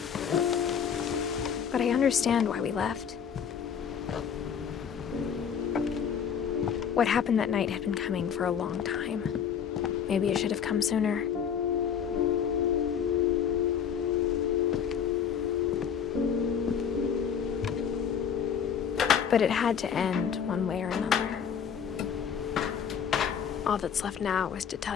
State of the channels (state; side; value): quieter; right; 7.7 dB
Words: But I understand why we left. What happened that night had been coming for a long time. Maybe it should have come sooner. But it had to end one way or another. All that's left now is to